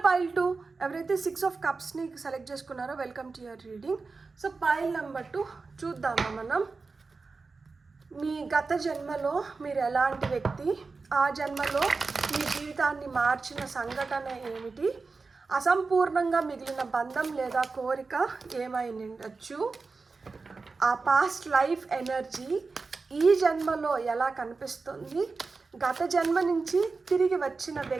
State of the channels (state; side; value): quieter; left; 4.2 dB